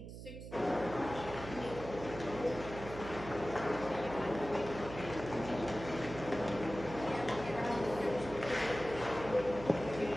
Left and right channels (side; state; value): right; noise; hum, 11 dB below the sound